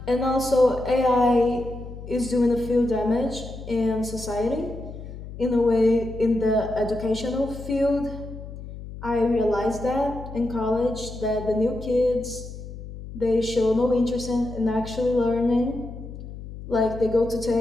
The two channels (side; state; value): left; noise; hum, 12 dB below the sound